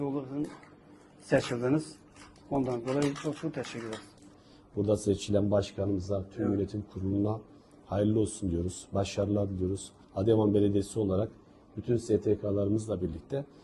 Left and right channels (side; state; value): both; identical; correlation 1.00